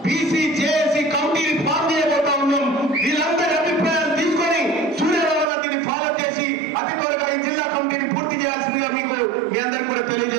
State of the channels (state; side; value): drops out; left; at 5.5 s